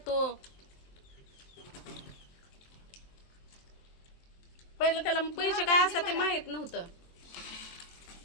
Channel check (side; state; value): right; late; 23 ms